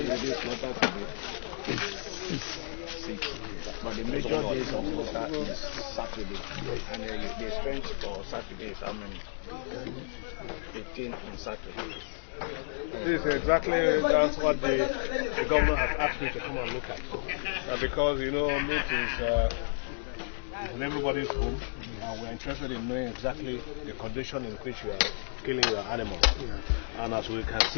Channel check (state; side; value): silent; right; digital silence